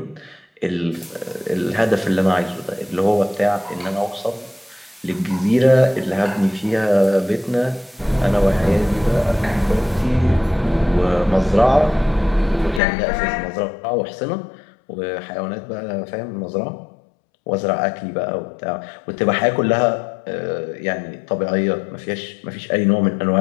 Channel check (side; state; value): right; drops out; at 12.8 s